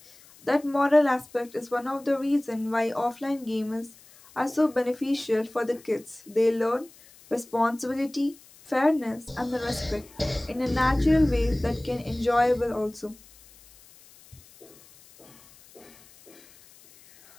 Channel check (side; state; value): left; noise; hiss, 25 dB below the sound